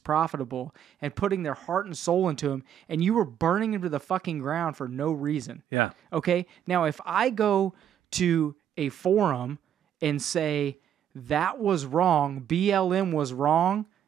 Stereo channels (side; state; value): left; quieter; 9.7 dB